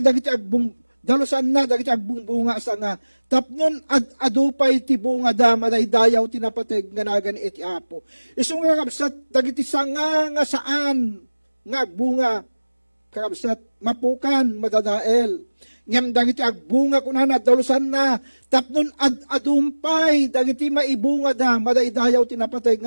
agbungbunga asa nga, tapnon adupay ti bunga da madaydayaw tinapateg ganagan iti apo. Isong nga kabsat, dagiti sanga nga saan nga agbunga, kakabsat, mapukan, madadael. Ngam dagiti agbunga kunana dalusan na tapnon adumpay dagiti maibunga da madaydayaw tinapatay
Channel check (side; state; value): both; inverted; correlation -1.00